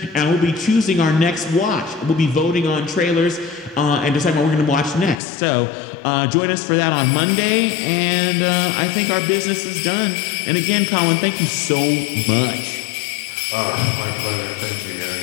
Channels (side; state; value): right; drops out; at 5.2 s